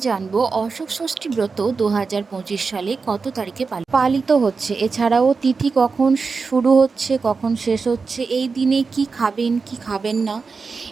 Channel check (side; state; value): left; quieter; 4.7 dB